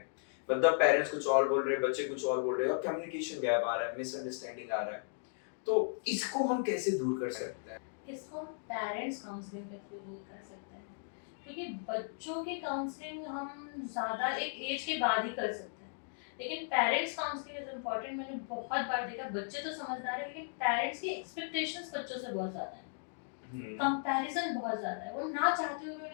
मतलब पेरेंट्स कुछ और बोल रहे हैं, बच्चे कुछ और बोल रहे हैं, और कम्युनिकेशन गैप आ रहा है, मिसअंडरस्टैंडिंग आ रहा है। तो इसको हम कैसे दूर कर सकते हैं? इसको हम पेरेंट्स काउंसलिंग के थ्रू दूर कर सकते हैं, क्योंकि बच्चों की काउंसलिंग हम ज़्यादा एक एज के बाद ही कर सकते हैं, लेकिन पेरेंट्स काउंसलिंग इज इम्पॉर्टेंट। मैंने बहुत बार देखा बच्चे तो समझदार है लेकिन पेरेंट्स की एक्सपेक्टेशंस बच्चों से बहुत ज़्यादा है, कंपैरिजन बहुत ज़्यादा है, वो ना चाहते हुए भी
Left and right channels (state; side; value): silent; right; digital silence